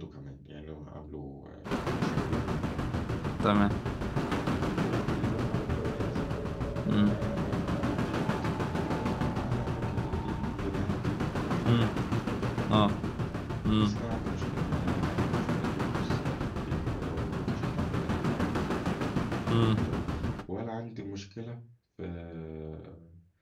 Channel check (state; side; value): identical; both; correlation 1.00